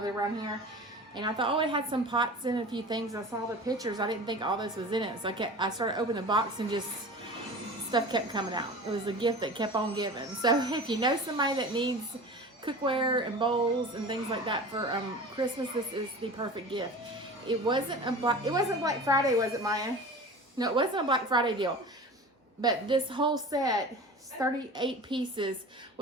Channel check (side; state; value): both; normal; correlation 0.36